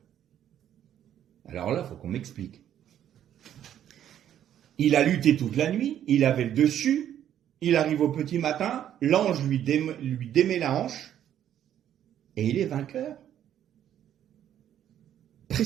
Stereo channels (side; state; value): left; quieter; 10.6 dB